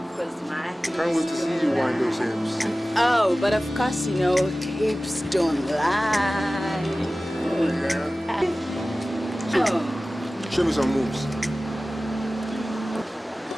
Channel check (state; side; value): normal; both; correlation 0.97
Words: course, my. Can't wait to see you wind those hips. Oh, but of course, you know, hips don't lie. Oh, yeah. Show me some moves.